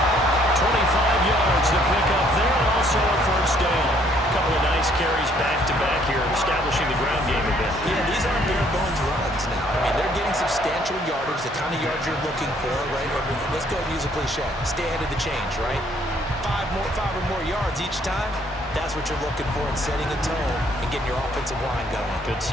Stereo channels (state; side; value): normal; both; correlation 0.64